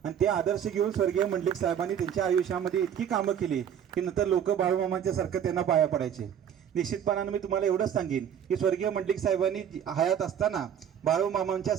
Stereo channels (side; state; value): left; quieter; 9.0 dB